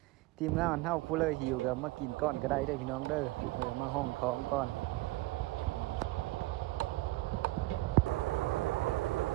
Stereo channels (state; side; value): quieter; left; 19.7 dB